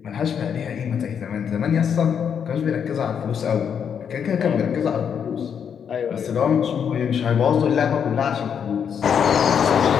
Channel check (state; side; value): quieter; right; 7.6 dB